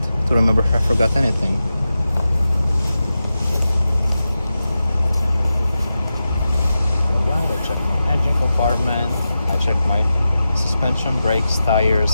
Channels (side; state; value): both; inverted; correlation -0.92